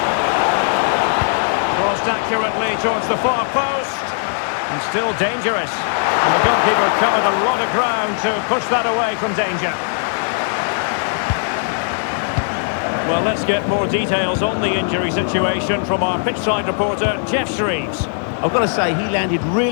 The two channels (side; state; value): right; silent; digital silence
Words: Crossed accurately towards the far post. And still dangerous. And the goalkeeper covered a lot of ground to push that away from danger. Well, let's get more details on the injury situation from our pitchside reporter, Jeff Shreves. I've got to say, he landed